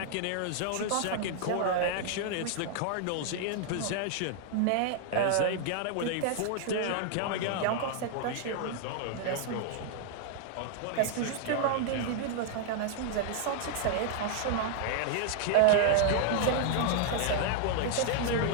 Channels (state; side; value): different; both; correlation -0.01